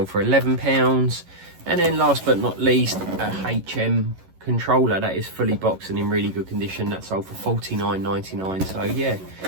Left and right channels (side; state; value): left; late; 11 ms